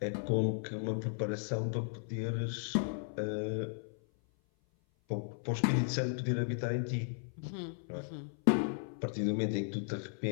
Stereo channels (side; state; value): right; silent; 54 dB below the other